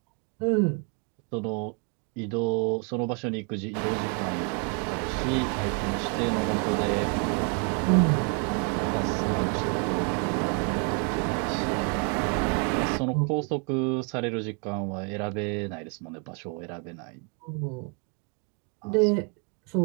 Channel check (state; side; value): quieter; left; 36.8 dB